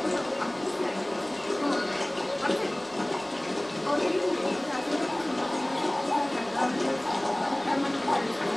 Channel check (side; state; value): right; noise; rumble, 28 dB below the sound